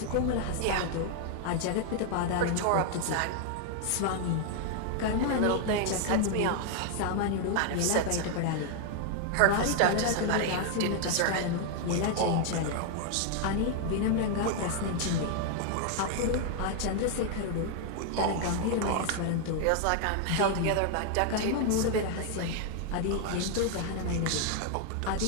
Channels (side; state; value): both; different; correlation 0.00